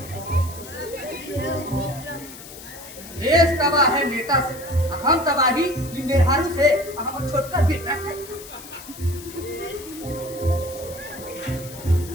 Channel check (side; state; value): left; noise; hiss, 15 dB below the sound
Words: देश तबाह है नेता से, हम तबाही मेहरारू से, हम छोटका बेटा से।